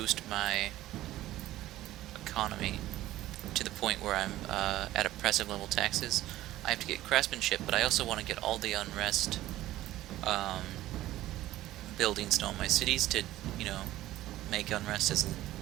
my economy to the point where I'm at oppressive level taxes. I have to get craftsmanship, but I also want to get all the unrest buildings known in my cities to, you know, make unrest as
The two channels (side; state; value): left; quieter; 15.1 dB